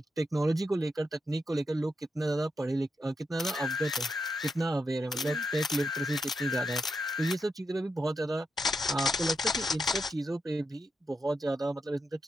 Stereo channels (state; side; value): normal; both; correlation 0.84